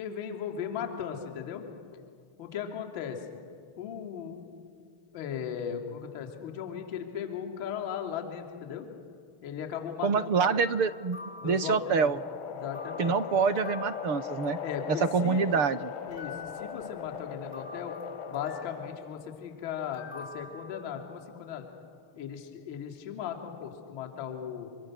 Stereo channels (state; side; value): late; left; 6.9 ms